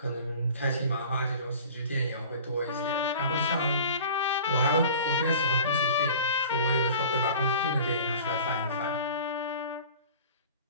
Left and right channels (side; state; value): both; inverted; correlation -0.42